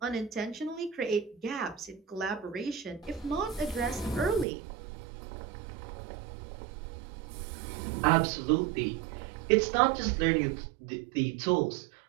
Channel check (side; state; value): left; drops out; at 4.5 s